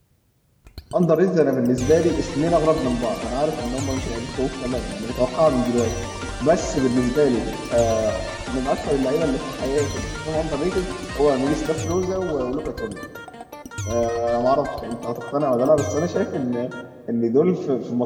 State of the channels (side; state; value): both; identical; correlation 1.00